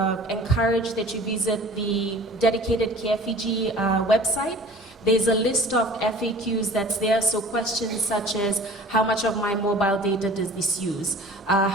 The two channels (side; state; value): both; normal; correlation 0.45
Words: encourage that you visit the dedicated careFIJI website. There's a list of FAQs that's there, so questions such as how much of my mobile data does this use?